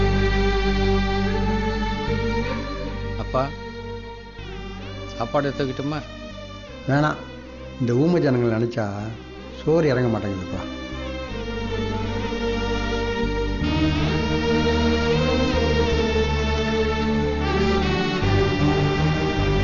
அப்பா, சாப்பாடு எடுத்துக்கிட்டுமா? வேணாம், இந்த ஊமை ஜனங்களை நினச்சா சோறு இறங்க மாட்டேங்குதுப்பா.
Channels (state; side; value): identical; both; correlation 1.00